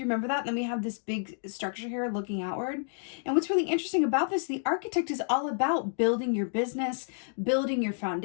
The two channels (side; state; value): right; silent; digital silence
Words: you remember that? Then we have this big structure here looking outward. And what's really interesting about this, the Architect is all about building your business, building your